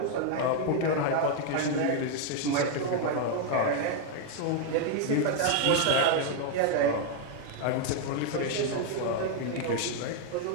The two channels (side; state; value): both; different; correlation 0.00